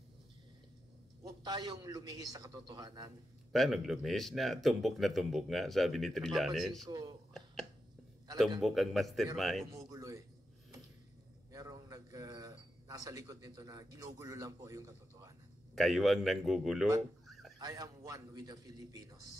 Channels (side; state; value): both; normal; correlation 0.88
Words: Huwag tayong lumihis sa katotohanan. Paano lumihis na? Tumbok nga, sabi ni Trillanes. Napapansin ko, Tumbok ang mastermind. Merong gumugulo eh. Merong nasa likod nito na ginugulo lang po yung katotohanan. Kayo ang nanggugulo. But I am one with the